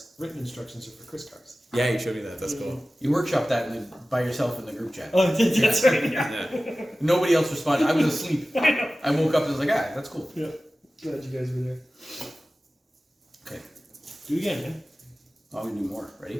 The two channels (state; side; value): normal; both; correlation 0.96